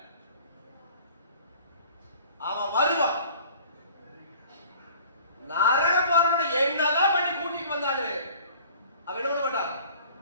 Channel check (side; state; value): both; inverted; correlation -0.48